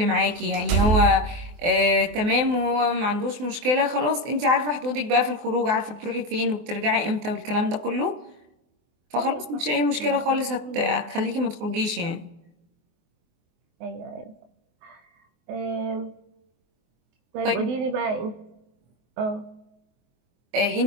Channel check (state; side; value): late; left; 24 ms